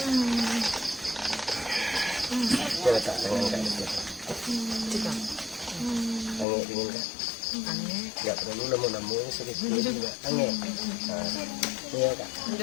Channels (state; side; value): drops out; right; at 6.5 s